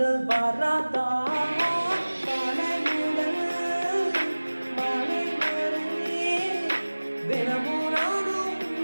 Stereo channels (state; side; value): inverted; both; correlation -1.00